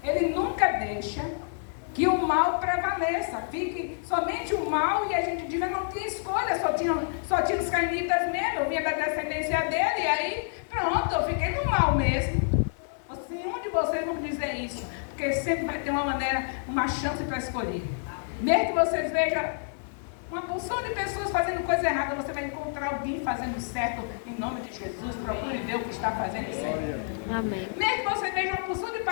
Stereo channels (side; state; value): right; silent; digital silence